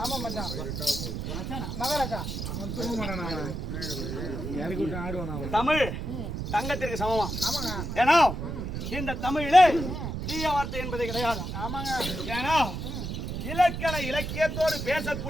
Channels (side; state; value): right; noise; rumble, 5 dB below the sound